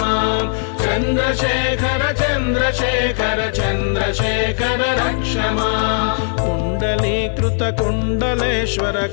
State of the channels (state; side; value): silent; right; 65 dB below the other